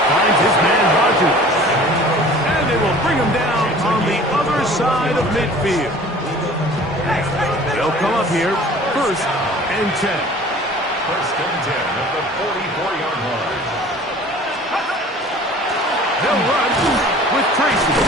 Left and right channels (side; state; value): both; normal; correlation 0.46